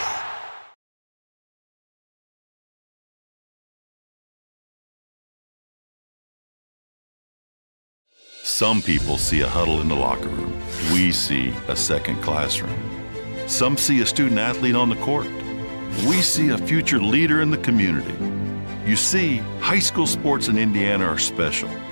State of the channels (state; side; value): inverted; both; correlation -1.00